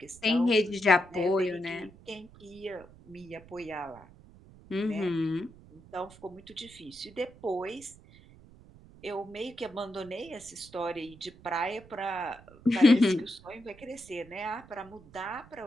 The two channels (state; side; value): noise; right; rumble, 22 dB below the sound